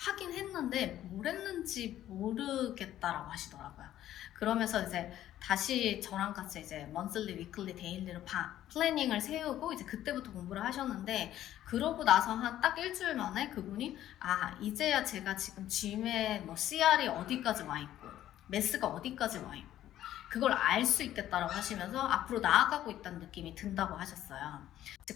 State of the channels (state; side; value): quieter; right; 12.6 dB